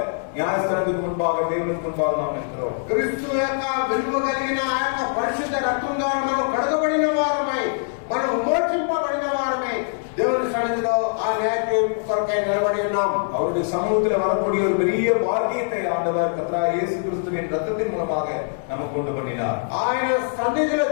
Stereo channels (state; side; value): silent; right; digital silence